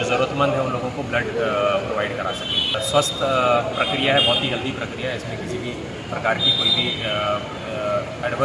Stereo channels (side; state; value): both; identical; correlation 1.00